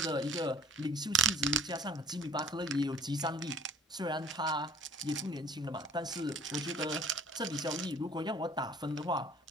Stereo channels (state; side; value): normal; both; correlation 0.53